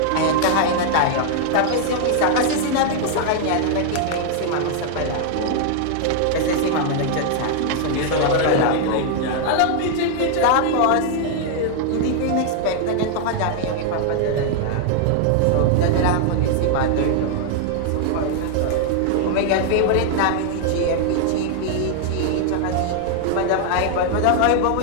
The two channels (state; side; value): different; both; correlation 0.00